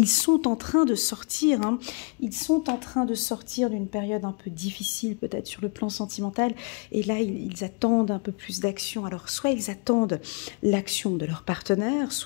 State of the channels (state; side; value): quieter; right; 34.0 dB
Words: sont en train de sortir. Hein. Ils sont en train de sortir d'une période un peu difficile, peut-être sur le plan sentimental. Et là, ils attendent un peu plus d'action. Alors, soit ils attendent l'action de leur partenaire,